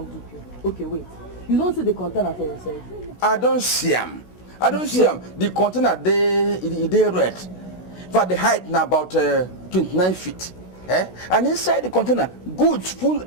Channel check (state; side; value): late; right; 16 ms